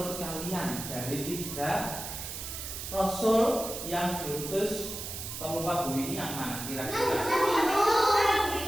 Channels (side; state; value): right; noise; hiss, 7 dB below the sound